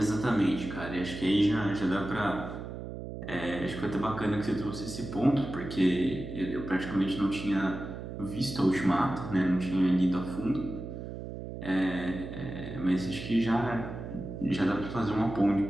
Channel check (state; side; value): noise; right; hum, 9 dB below the sound